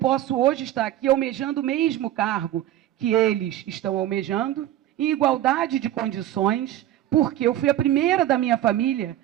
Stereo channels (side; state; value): left; quieter; 13.0 dB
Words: hoje estar aqui almejando o mesmo cargo que eles estão almejando, em igualdade de condições, porque eu fui a primeira da minha família